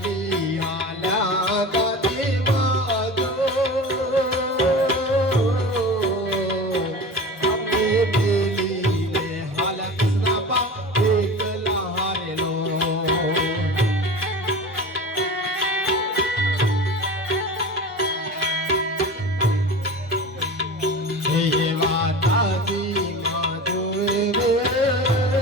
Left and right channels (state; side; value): normal; both; correlation 0.33